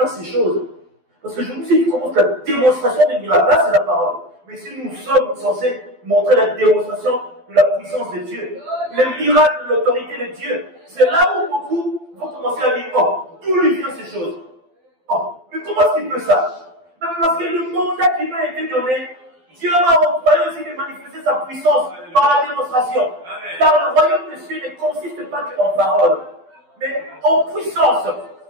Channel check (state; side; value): late; left; 12 ms